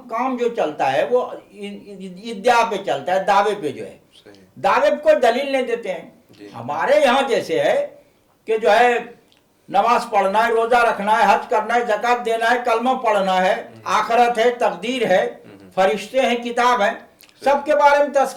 काम जो चलता है वो इद्या पे चलता है, दावे पे जो है। दावे पे कोई दलील नहीं देते हैं। हमारे यहाँ जैसे है कि जो है नमाज पढ़ना है, रोजा रखना है, हज करना है, ज़कात देना है, कलमा पढ़ना है, आखिरत है, तकदीर है, फरिश्ते हैं, किताब है, सबके बारे में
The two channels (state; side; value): identical; both; correlation 1.00